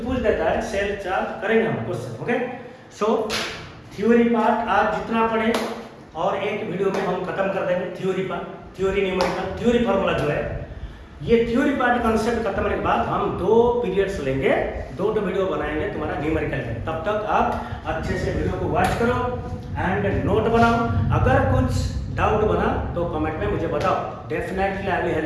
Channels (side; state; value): both; identical; correlation 1.00